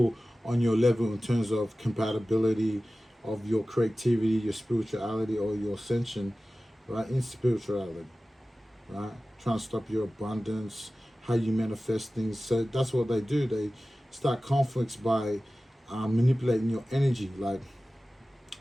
on your level in terms of compatibility of your creativity, your spirituality, or your ascension, right, in spirituality, right? Trying to stop your abundance, how you manifest things. So that's what they do. They start conflicts by manipulating your energy. Like,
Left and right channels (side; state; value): both; normal; correlation 0.96